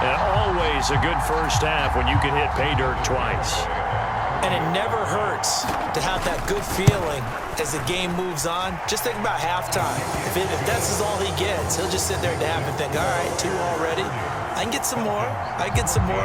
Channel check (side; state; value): both; identical; correlation 1.00